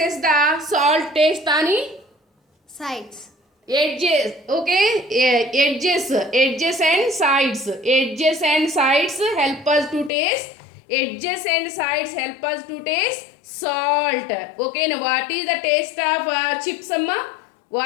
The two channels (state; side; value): drops out; right; at 10.1 s